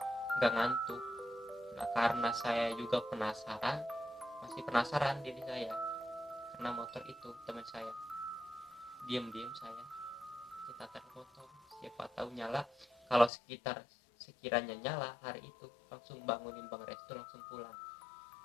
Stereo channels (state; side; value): drops out; right; at 13.3 s